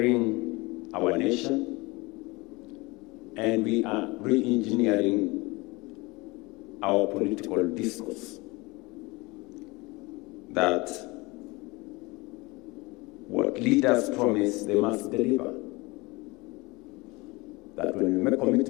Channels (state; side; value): quieter; right; 24.0 dB